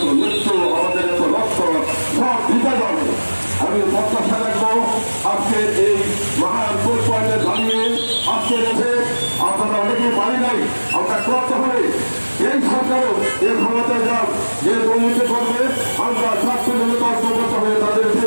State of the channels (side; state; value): both; inverted; correlation -1.00